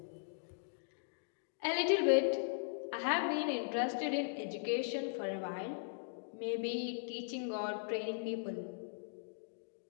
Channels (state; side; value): silent; right; digital silence